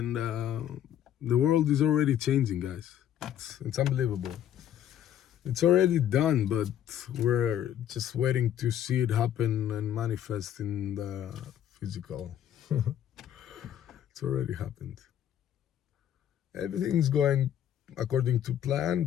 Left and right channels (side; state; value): right; quieter; 10.5 dB